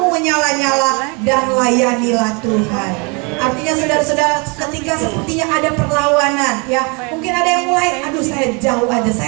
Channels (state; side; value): quieter; left; 31.8 dB